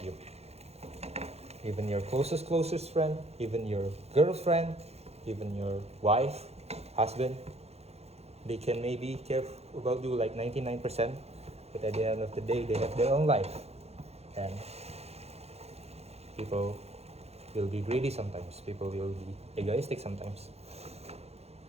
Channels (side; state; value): left; late; 0.30 ms